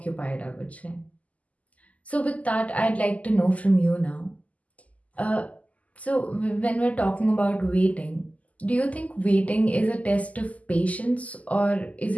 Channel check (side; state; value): right; late; 0.072 ms